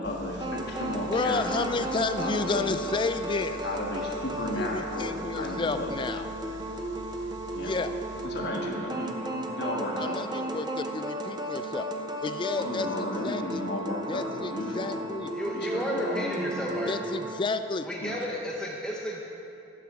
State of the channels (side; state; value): both; normal; correlation 0.37